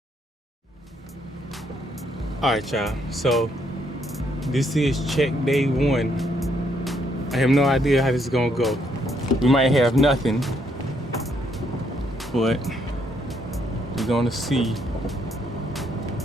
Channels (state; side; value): normal; both; correlation 0.73